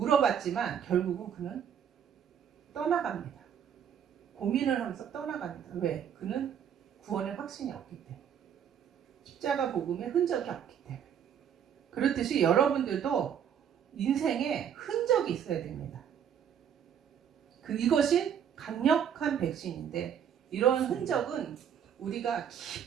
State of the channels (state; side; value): quieter; left; 8.6 dB